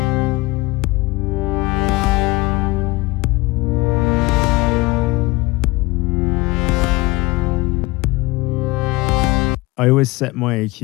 I always set my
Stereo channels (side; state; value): right; quieter; 21.7 dB